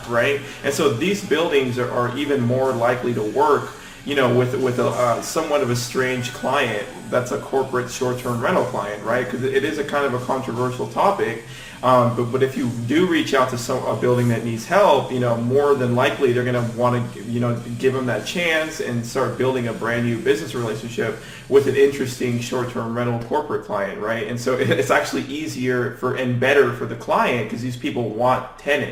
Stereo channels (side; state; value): both; identical; correlation 1.00